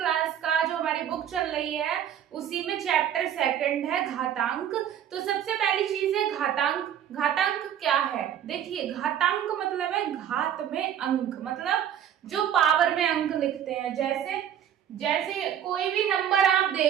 का जो हमारी बुक चल रही है, उसी में चैप्टर 2 है घातांक। तो सबसे पहली चीज है घातांक। घातांक क्या है? देखिए, घातांक मतलब है घात में अंक, मतलब जो पावर में अंक लिखते हैं। जैसे कोई भी नंबर आप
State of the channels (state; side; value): quieter; left; 9.8 dB